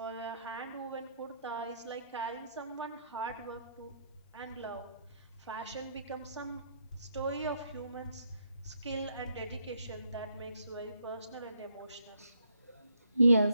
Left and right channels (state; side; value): inverted; both; correlation -0.73